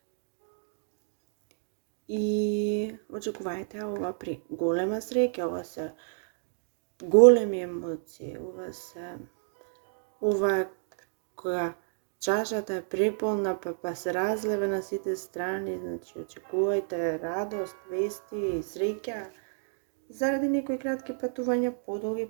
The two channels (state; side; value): silent; left; digital silence